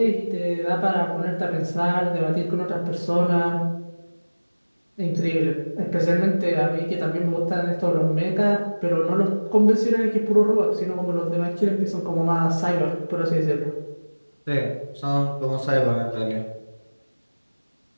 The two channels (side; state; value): both; inverted; correlation -1.00